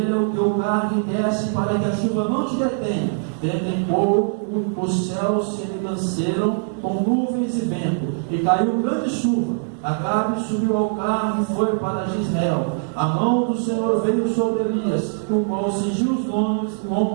o teu carro e desce, para que a chuva não te detenha. Dentro em pouco os céus se enegranceram com nuvens e vento, e caiu grande chuva. Acabe subiu ao carro e foi para Jezreel. A mão do Senhor veio sobre Elias, o qual cingiu os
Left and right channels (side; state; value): left; silent; digital silence